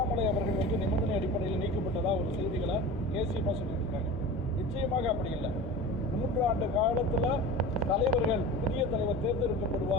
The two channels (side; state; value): both; normal; correlation 0.34